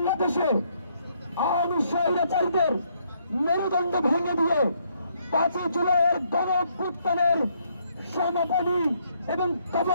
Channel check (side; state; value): both; inverted; correlation -0.71